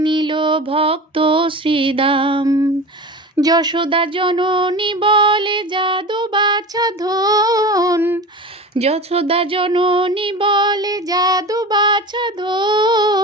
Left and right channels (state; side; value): normal; both; correlation 0.31